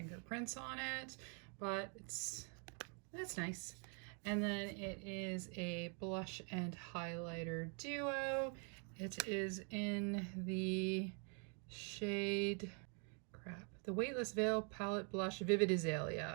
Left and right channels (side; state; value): left; quieter; 39.4 dB